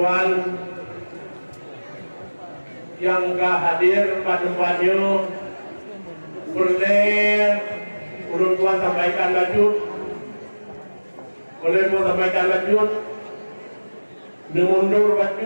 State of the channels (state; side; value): inverted; both; correlation -1.00